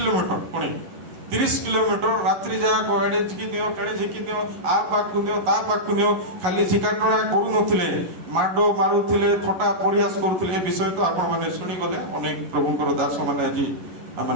ପୁଣି 30 କିଲୋମିଟର ରାତ୍ରି ଯାକ ଏଣେ ଝିକି ଦିଅ ତେଣେ ଝିକି ଦିଅ, ଆ ପାଖକୁ ଦିଅ ତା ପାଖକୁ ଦିଅ, ଖାଲି ଝିକାଟଣା କରୁନଥିଲେ, ମାଡ ମାରୁଥିଲେ, ଥଟ୍ଟା ପରିହାସ କରୁଥିଲେ। ଏ ବିଷୟ ତ ଆପଣମାନେ ଶୁଣିଗଲେ, ଅନେକ ପ୍ରଭୁଙ୍କର ଦାସ ମାନେ ଆଜି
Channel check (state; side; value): late; left; 11 ms